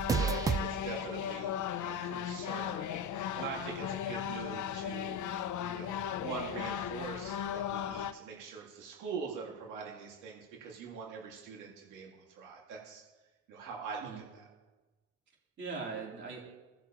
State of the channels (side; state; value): both; normal; correlation 0.21